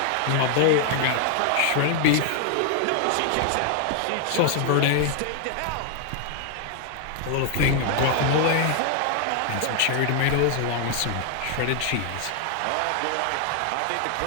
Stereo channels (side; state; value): both; different; correlation 0.00